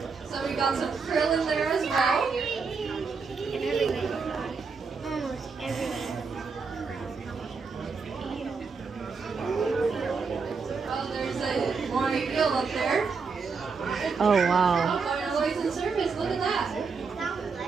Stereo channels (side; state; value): left; quieter; 5.0 dB